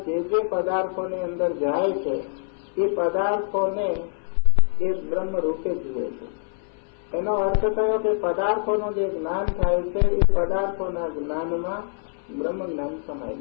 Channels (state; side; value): silent; right; 59 dB below the other